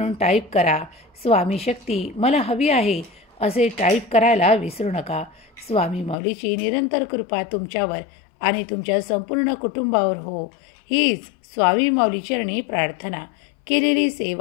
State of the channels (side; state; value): right; drops out; at 6.2 s